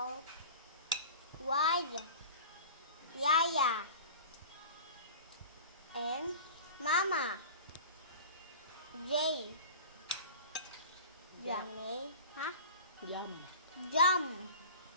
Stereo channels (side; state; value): both; inverted; correlation -0.37